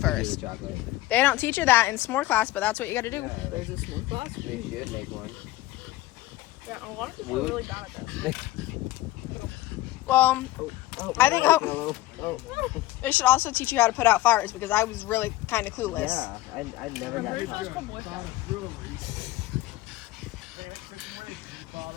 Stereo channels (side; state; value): right; quieter; 16.5 dB